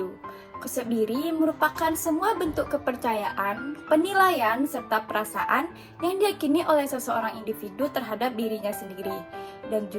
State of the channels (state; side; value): identical; both; correlation 1.00